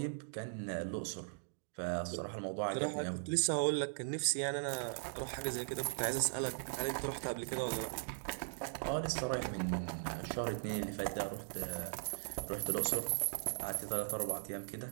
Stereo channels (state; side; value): silent; left; digital silence